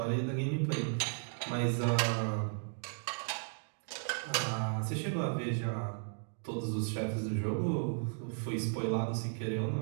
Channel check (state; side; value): silent; left; 54 dB below the other